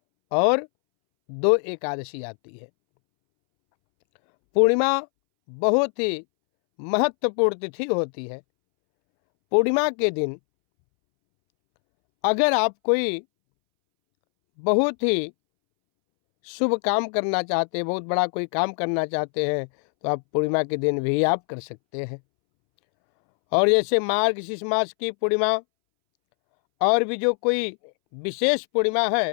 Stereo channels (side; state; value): right; silent; 63 dB below the other